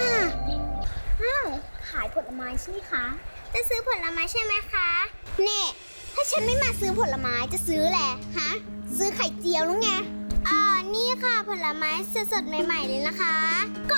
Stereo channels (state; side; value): inverted; both; correlation -1.00